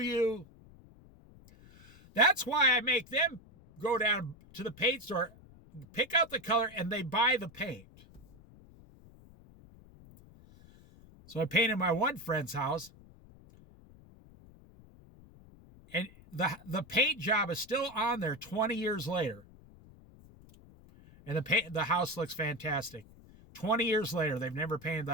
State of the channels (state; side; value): noise; left; rumble, 23 dB below the sound